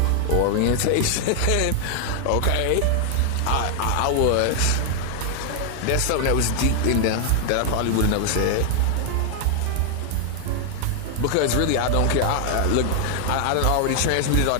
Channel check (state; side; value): different; both; correlation 0.00